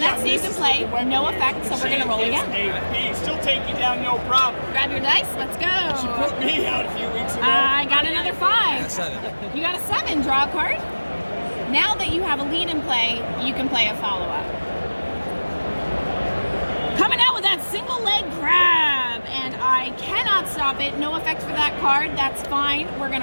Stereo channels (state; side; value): inverted; both; correlation -1.00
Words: stays in play, no effect, so we're going to roll again. Still take you down, no problem. Grab your dice, let's go. She put me out a few weeks ago. I got another 5. You got a 7, draw a card. Now that you have a lead in play, you can play a follow-up. Coming out with that single leg grab, and I cannot stop it. No effect for that card, that's fine. We're going